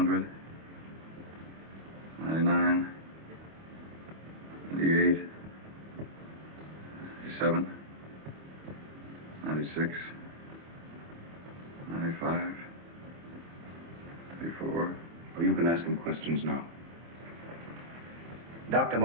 99. 98. 97. 96. 95. 84. Well, you can ask him questions now. Dr.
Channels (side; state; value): left; late; 25 ms